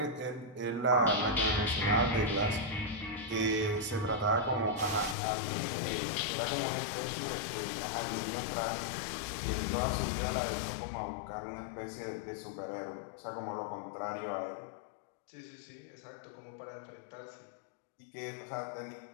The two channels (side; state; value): right; drops out; at 5.2 s